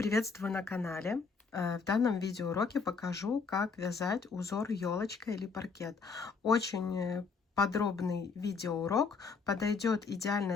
на канале. В данном видеоуроке покажу, как вязать узор елочка или паркет. Очень подробный видеоурок, подойдет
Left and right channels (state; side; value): quieter; right; 5.1 dB